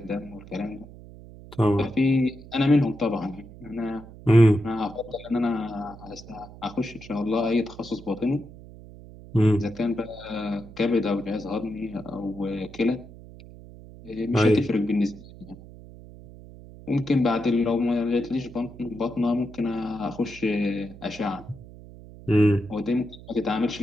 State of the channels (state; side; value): noise; right; hum, 18 dB below the sound